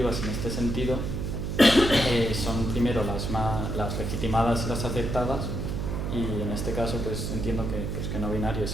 en este sentido son primero las legitimadas y las aceptadas, y en este caso pues entiendo que no binarios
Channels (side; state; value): right; noise; hum, 2 dB below the sound